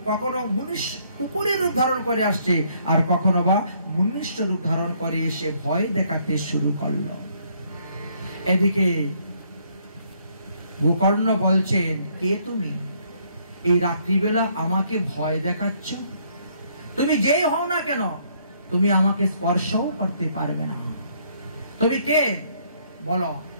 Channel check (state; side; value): inverted; both; correlation -0.67